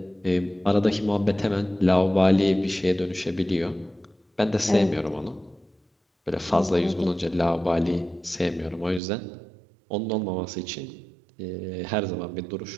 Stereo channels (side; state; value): left; drops out; at 9.0 s